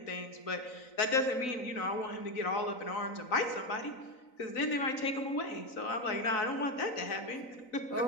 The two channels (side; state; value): right; late; 3.9 ms